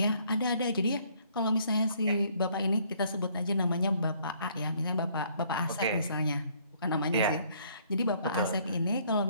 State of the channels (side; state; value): both; inverted; correlation -0.64